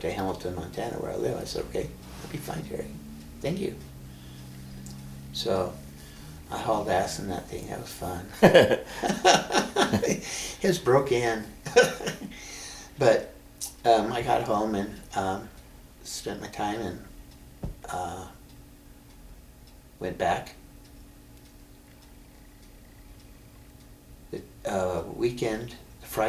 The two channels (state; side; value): identical; both; correlation 1.00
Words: to Hamilton, Montana, where I live." I said, "Okay, that'll be fine, Terry." thank you. So I hauled ass in that thing. That was fun. It was broke in. But I got home and spent my time and went back. The weekend,